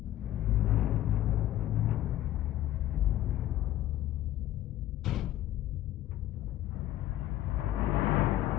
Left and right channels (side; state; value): right; quieter; 13.6 dB